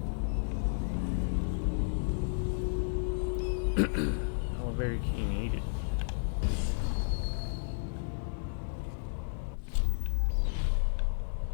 Oh, very keen needed.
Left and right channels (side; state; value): right; silent; digital silence